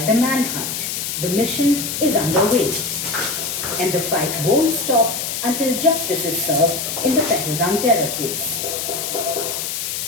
the manhunt. The mission is underway. And the fight won't stop until justice is served in the Pahalgam terror case.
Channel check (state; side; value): noise; left; hiss, 3 dB below the sound